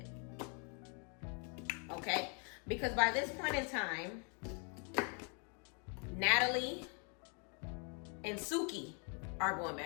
okay? Because by this point in time, Natalie and Suki are going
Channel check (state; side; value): quieter; right; 38.1 dB